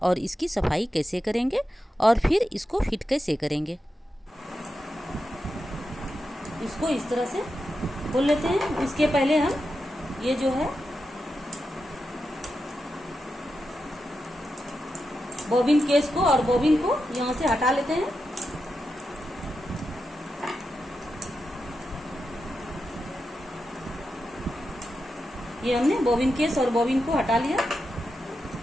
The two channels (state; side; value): normal; both; correlation 0.88